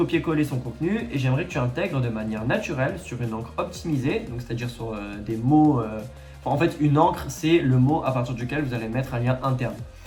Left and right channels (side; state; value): both; identical; correlation 1.00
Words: son contenu et j'aimerais que tu intègres de manière naturelle sur une encre optimisée, donc c'est-à-dire sur des mots. En fait, une encre, c'est le mot à partir duquel vous allez mettre un lien interne.